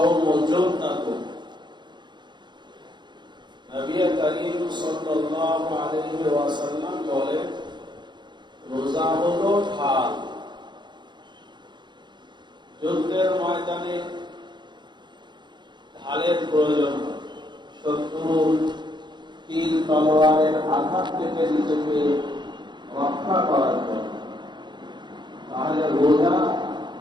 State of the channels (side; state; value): left; late; 0.22 ms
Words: جنة. নবী করিম সাল্লাল্লাহু আলাইহি ওয়াসাল্লাম বলেন, রোজা হলো ঢাল। যুদ্ধের ময়দানে ঢালের প্রয়োজন হয় শত্রুর তীর তলোয়ারের আঘাত থেকে নিজেকে রক্ষা করার জন্য। তাহলে রোজা